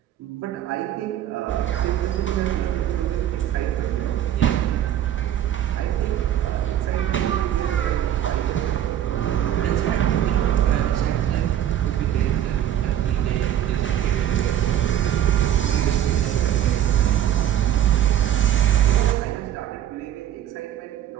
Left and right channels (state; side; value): quieter; left; 11.1 dB